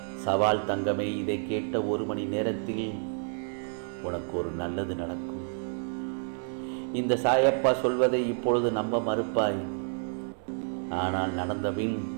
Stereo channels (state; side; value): silent; left; 58 dB below the other